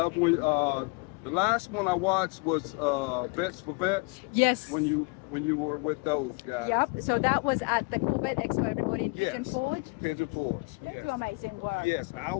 when the last one I watched was Vets for Vets. Yes. When you were with those guys. Yep. So that was at the Corvette Expo, everybody in Pigeon Yes. Forge. Pigeon Forge. They Yes. do amazing work. Yes, I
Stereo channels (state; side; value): quieter; right; 31.5 dB